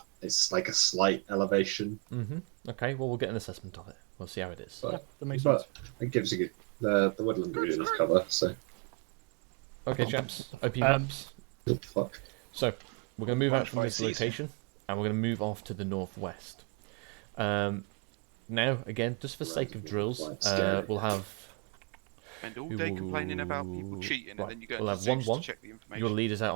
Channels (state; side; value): quieter; left; 34.3 dB